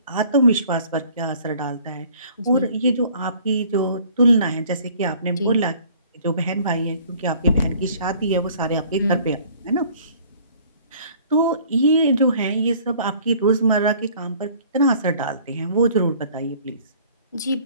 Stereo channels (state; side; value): inverted; both; correlation -0.54